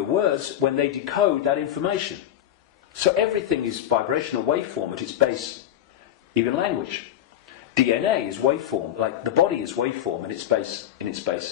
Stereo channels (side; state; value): right; quieter; 11.4 dB